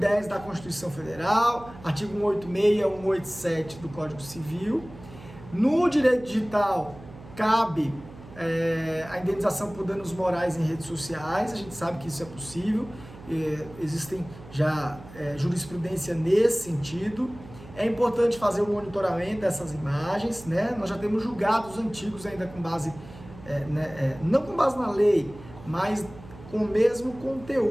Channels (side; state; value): right; noise; hum, 18 dB below the sound